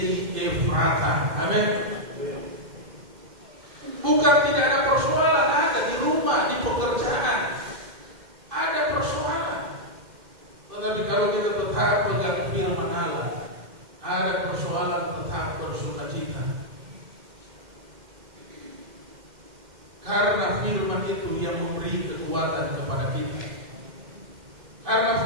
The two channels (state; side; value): late; left; 2.1 ms